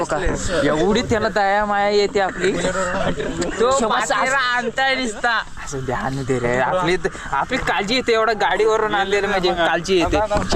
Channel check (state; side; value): identical; both; correlation 1.00